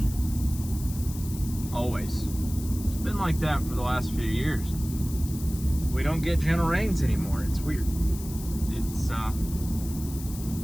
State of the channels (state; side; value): noise; left; hiss, 14 dB below the sound